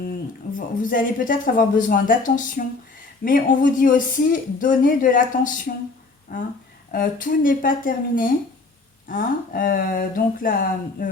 Vous allez peut-être avoir besoin d'attention, mais on vous dit aussi donner de l'attention, hein. Tout n'est pas terminé, hein. Donc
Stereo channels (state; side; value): quieter; right; 3.8 dB